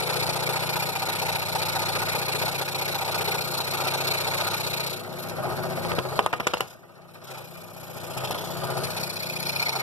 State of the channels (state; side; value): normal; both; correlation 0.05